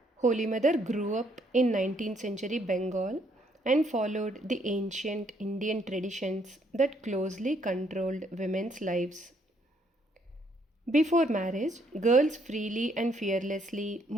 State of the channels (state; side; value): normal; both; correlation 0.70